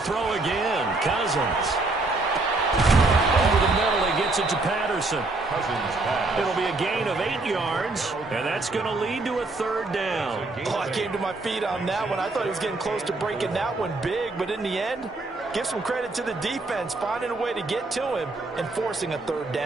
throw again. Cousins. Over the middle, he gets it to Patterson. Cousins pass. It'll be a gain of 8 yards, and that's going to lead to a 3rd down. Oh, I came to my feet on that one. I thought he was getting close to breaking that one big, but in the end, give some credit to the defense, finding a way to get to him and forcing a 3rd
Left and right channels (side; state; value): left; quieter; 3.2 dB